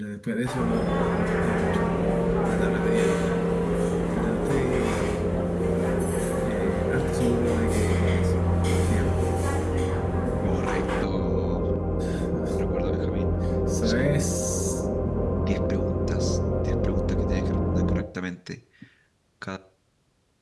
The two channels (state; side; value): identical; both; correlation 1.00